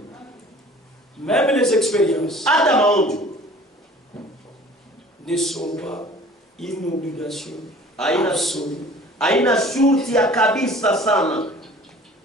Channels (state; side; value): normal; both; correlation 0.48